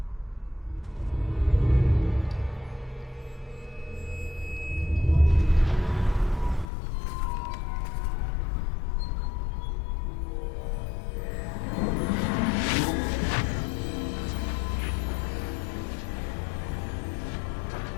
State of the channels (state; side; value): drops out; right; at 6.7 s